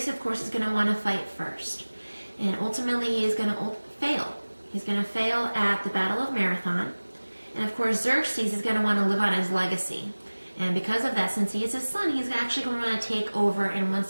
of course, is going to want to fight first. And ultimately he is going to fail. He's going to fail at the Battle of Marathon. And of course Xerxes is going to want to live on his legacy. And because of that, since he is his son, he's actually going to want to take over and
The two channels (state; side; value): inverted; both; correlation -1.00